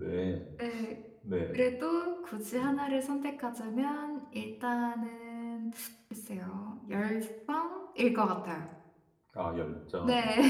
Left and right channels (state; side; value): identical; both; correlation 1.00